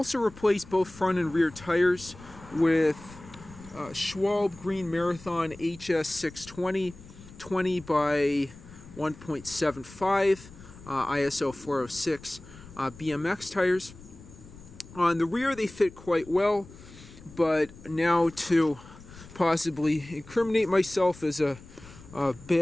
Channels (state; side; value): noise; left; rumble, 19 dB below the sound